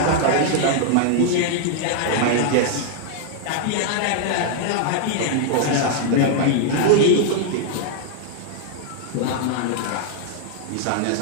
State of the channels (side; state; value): both; different; correlation -0.01